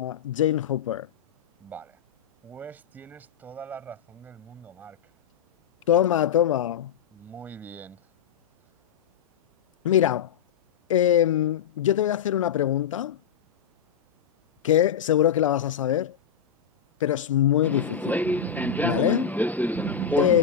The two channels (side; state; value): right; quieter; 8.0 dB